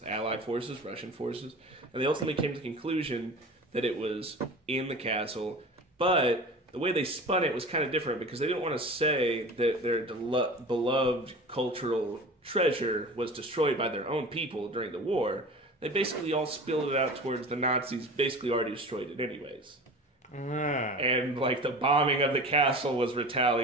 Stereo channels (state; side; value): normal; both; correlation 0.36